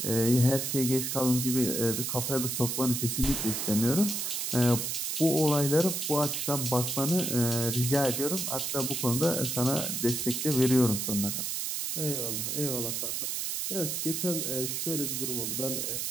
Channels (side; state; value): right; noise; hiss, 1 dB below the sound